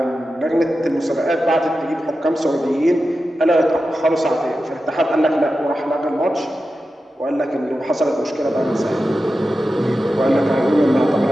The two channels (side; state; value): both; normal; correlation 0.92